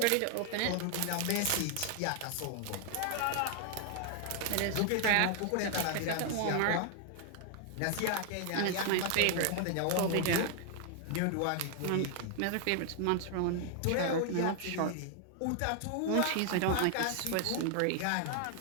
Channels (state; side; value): different; both; correlation 0.00